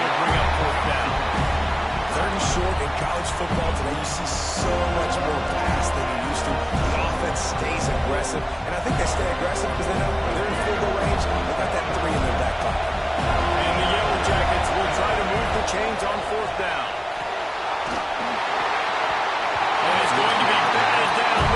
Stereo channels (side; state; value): both; identical; correlation 1.00